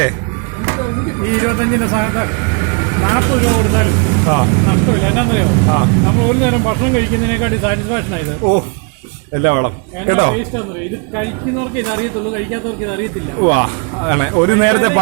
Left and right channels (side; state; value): left; quieter; 34.7 dB